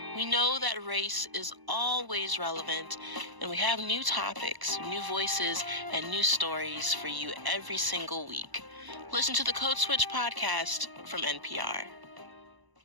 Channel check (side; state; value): left; late; 1.0 ms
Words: We know that race is always relevant, and we have new topics, new voices, and new stories for you every single week. Listen to the Code Switch podcast from NPR.